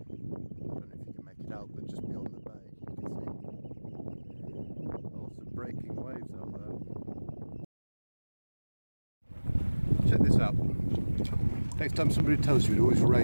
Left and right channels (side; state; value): both; inverted; correlation -1.00